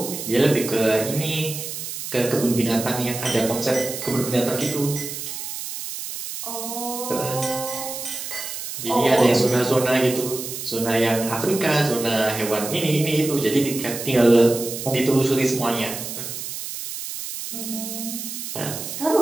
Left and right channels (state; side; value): noise; right; hiss, 7 dB below the sound